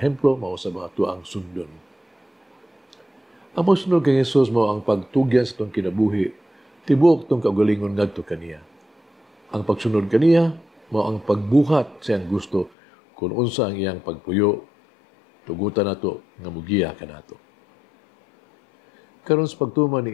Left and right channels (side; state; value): right; drops out; at 12.7 s